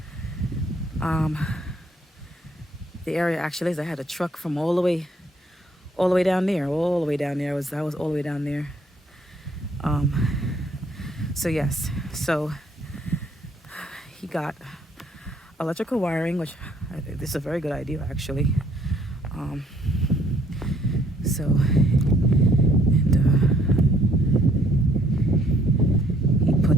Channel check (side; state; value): both; normal; correlation 0.64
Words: um, the area actually is. I had a truck from all the way down there, all the way down there. I was all the way down there. So yes, so he got electrical wiring, which this is a very good idea actually. Um, so and he